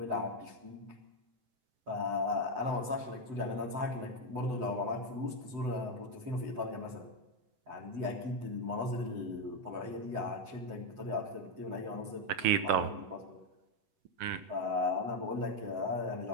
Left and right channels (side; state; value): left; late; 8.0 ms